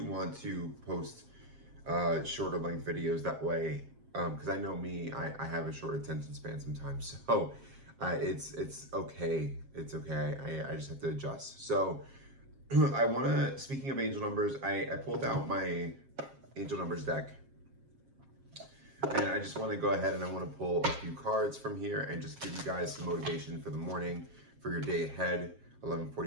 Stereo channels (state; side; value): late; left; 7.5 ms